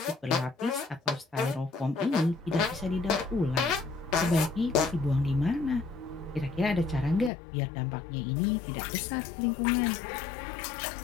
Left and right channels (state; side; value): drops out; right; at 7.3 s